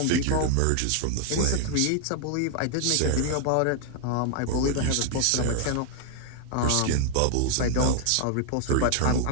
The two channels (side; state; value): both; different; correlation 0.00